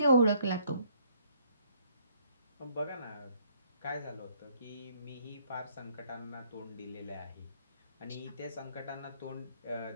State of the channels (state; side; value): inverted; both; correlation -0.64